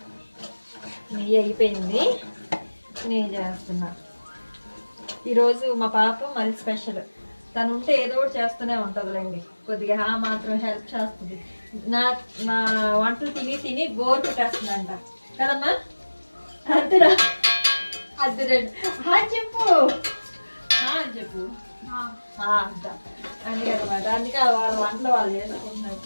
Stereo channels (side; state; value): both; inverted; correlation -1.00